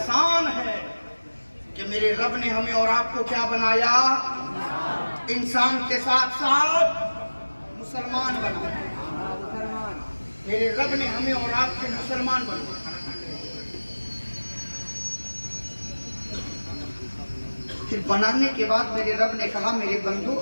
है कि मेरे रब ने हमें और आपको क्या बनाया, इंसान के साथ साथ मुसलमान बनाया। मेरे रब ने हमें और आपको मुसलमान बनाया। फिर बनाने के बाद मेरे रब ने कहा, मेरे बंदो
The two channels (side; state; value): both; inverted; correlation -1.00